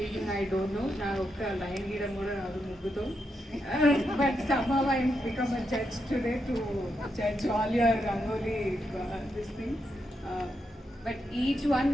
I don't know. Na okka line gidam kuda raadu mugguto. But somehow I become a judge today to judge all your Rangoli this thing. But each one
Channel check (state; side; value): normal; both; correlation 0.83